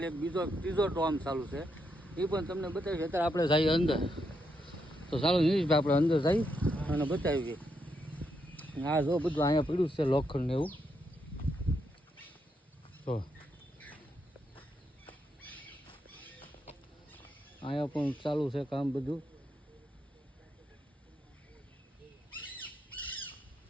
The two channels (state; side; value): normal; both; correlation 0.80